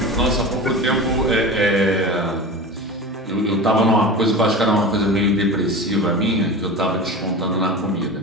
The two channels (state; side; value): normal; both; correlation 0.30